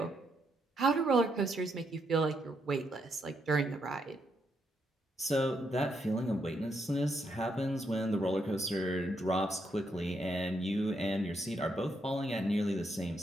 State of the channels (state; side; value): normal; both; correlation 0.78